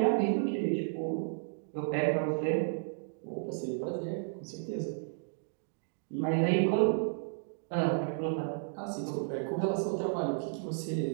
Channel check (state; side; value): silent; left; digital silence